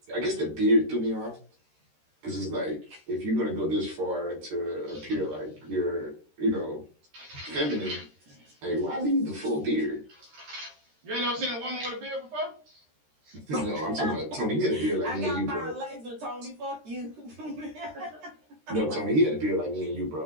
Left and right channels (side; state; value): left; late; 13 ms